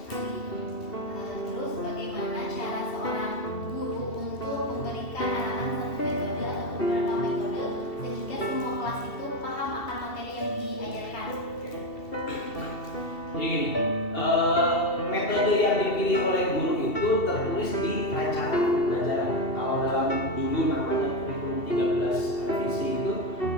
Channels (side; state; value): right; late; 2.7 ms